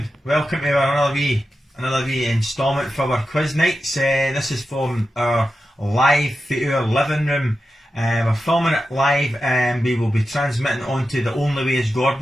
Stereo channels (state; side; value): normal; both; correlation 0.91